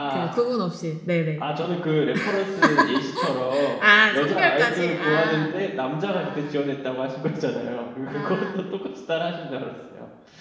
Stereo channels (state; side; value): identical; both; correlation 1.00